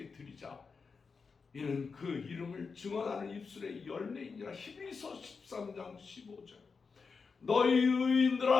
드리자. 이는 그 이름을 증언하는 입술의 열매이니라. 히브리서 13장 15절. 너희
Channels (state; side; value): quieter; right; 5.1 dB